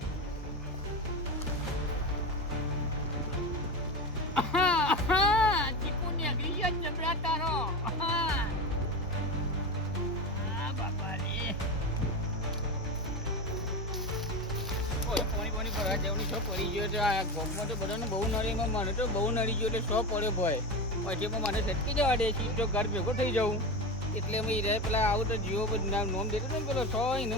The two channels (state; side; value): normal; both; correlation 0.21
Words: ચીકુ ને અગરી ગયો જબરા તારો આ બાપા રે પોણી ભરવા જવાની શો પડી ગયો છે આ ગોપમાં તો બધાને બહુ નડી મને તો બહુ નડી ગયો એટલે શો પડ્યો ભય પછી પણ મને સટકી જવા દે છે તો ઘર ભેગો થઈ જાઉં એટલે અમે રે પેલા આવું તો જીવો નોમ દેતો ને પેલો શો